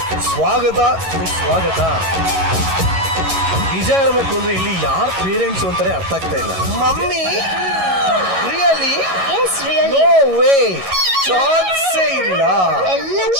ಸ್ವಾಗತ ಸುಸ್ವಾಗತ. ನಿಜ ಹೇಳ್ಬೇಕು ಅಂದ್ರೆ ಇಲ್ಲಿ ಯಾರು ಪೇರೆಂಟ್ಸ್ ಅಂತಾನೆ ಅರ್ಥ ಆಗ್ತಾ ಇಲ್ಲ. ಮಮ್ಮಿ ರಿಯಲಿ ನೋ ವೇ, ಚಾನ್ಸೇ ಇಲ್ಲ. ಎಲ್ಲ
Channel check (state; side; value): late; left; 11 ms